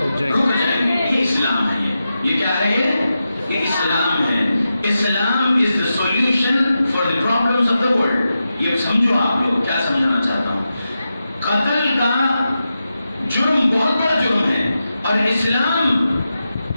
جائیں گے۔ یہ اسلام ہے، یہ کیا ہے؟ یہ اسلام ہے۔ اسلام is the solution for the problems of the world۔ یہ سمجھو آپ لوگ کیا سمجھانا چاہتا ہوں۔ قتل کا جرم بہت بڑا جرم ہے، اور اسلام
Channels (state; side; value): inverted; both; correlation -0.90